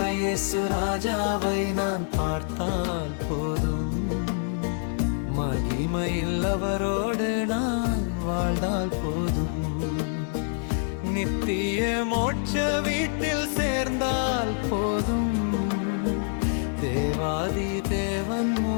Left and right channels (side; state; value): right; silent; digital silence